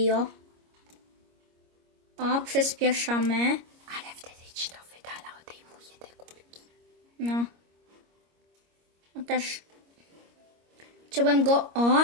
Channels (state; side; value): late; left; 25 ms